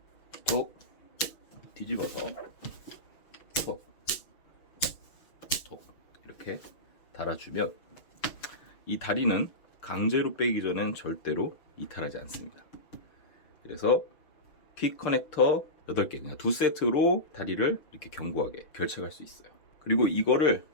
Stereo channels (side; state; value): right; late; 6.2 ms